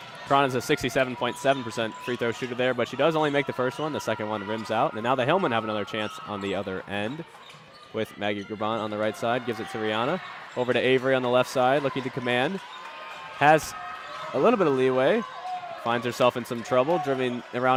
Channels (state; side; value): identical; both; correlation 1.00